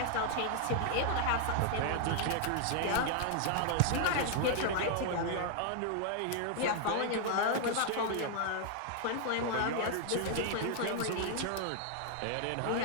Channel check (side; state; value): both; different; correlation 0.00